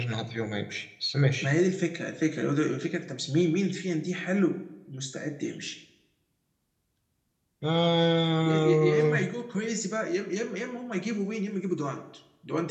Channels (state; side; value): identical; both; correlation 1.00